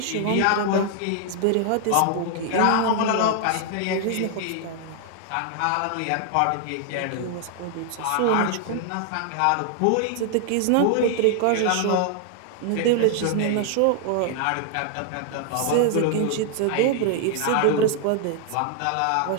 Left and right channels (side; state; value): both; different; correlation 0.00